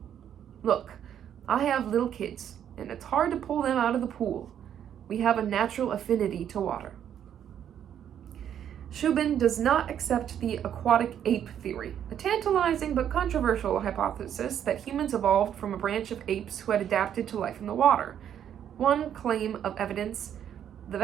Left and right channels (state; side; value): quieter; left; 9.6 dB